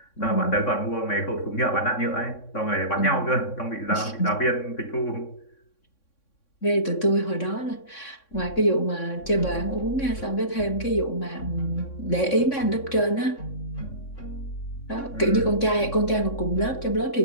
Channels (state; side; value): late; right; 3.6 ms